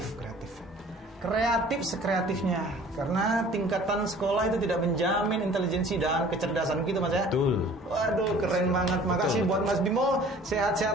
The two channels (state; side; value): normal; both; correlation 0.49